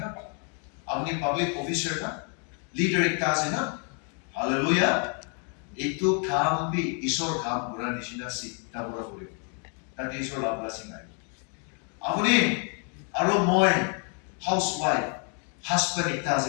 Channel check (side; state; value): right; quieter; 39.3 dB